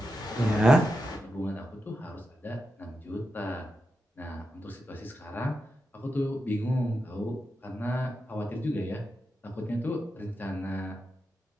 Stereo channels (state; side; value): normal; both; correlation 0.88